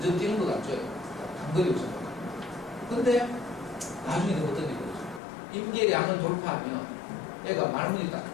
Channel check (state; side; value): drops out; right; at 5.2 s